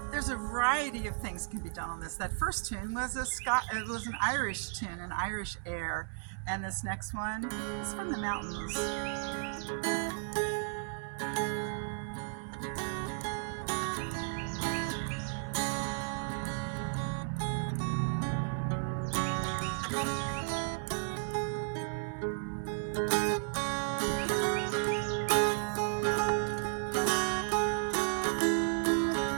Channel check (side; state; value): left; silent; 55 dB below the other